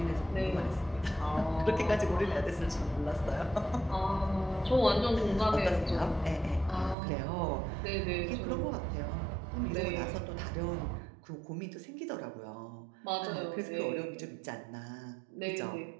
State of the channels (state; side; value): drops out; left; at 7.0 s